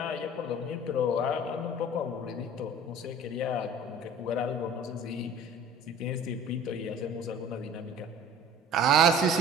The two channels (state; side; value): normal; both; correlation 0.45